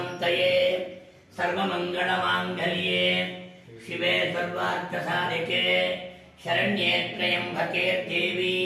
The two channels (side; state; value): both; identical; correlation 1.00